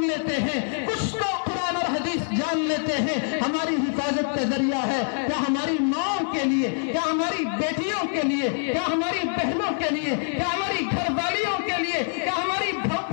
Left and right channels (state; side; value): silent; right; digital silence